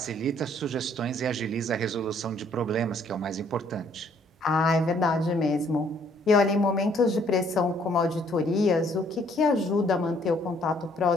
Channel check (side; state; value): both; normal; correlation 0.64